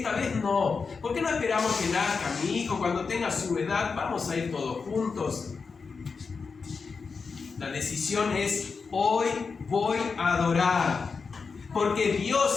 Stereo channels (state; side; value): quieter; right; 5.0 dB